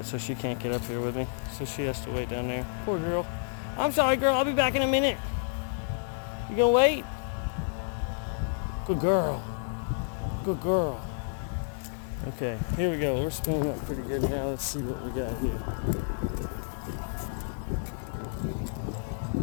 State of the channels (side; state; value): right; silent; digital silence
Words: so she can't get up here with me. So she has to wait down there. Poor girl. I'm sorry, girl. I'll be back in a minute. You gonna wait? Good girl. Good girl. Okay, here we go. We're spinning up pretty good now. Let's see what we got here.